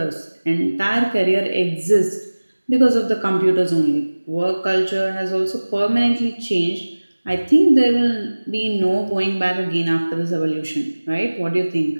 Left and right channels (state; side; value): inverted; both; correlation -1.00